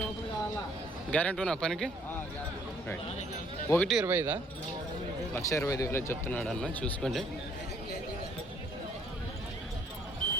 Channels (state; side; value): normal; both; correlation 0.63